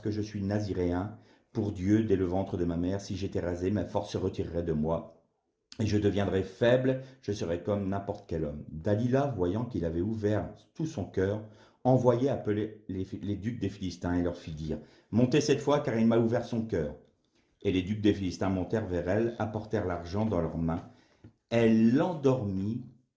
je suis naziréen pour Dieu dès le ventre de ma mère. Si j'étais rasé, ma force se retirerait de moi et je deviendrais faible, je serais comme n'importe quel homme. Dalila, voyant qu'il avait ouvert tout son cœur, envoyait appeler les ducs des Philistins et leur fit dire, montez cette fois car il m'a ouvert son cœur. Et les ducs des Philistins montèrent vers elle, apportèrent l'argent dans leurs mains. Elle l'endormit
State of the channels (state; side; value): identical; both; correlation 1.00